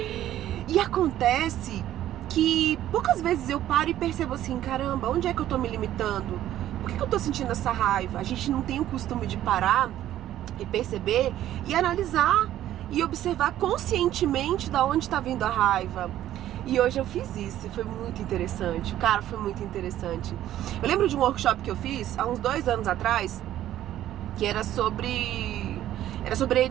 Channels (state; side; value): quieter; left; 12.7 dB